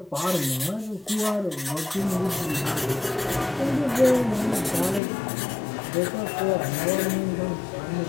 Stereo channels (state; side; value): drops out; right; at 5.0 s